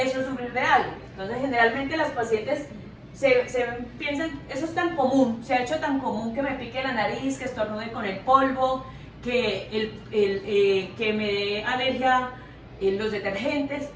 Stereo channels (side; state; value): both; identical; correlation 1.00